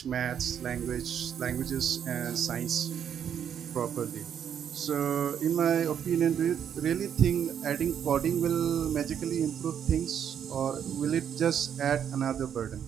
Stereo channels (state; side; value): quieter; left; 8.7 dB